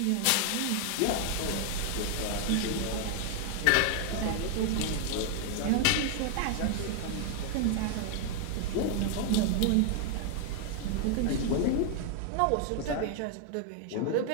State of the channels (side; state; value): both; different; correlation 0.00